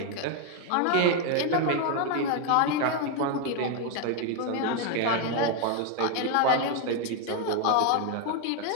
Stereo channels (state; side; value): different; both; correlation 0.01